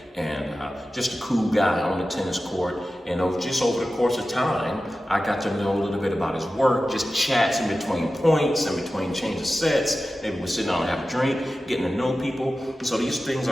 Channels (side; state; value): both; normal; correlation 0.94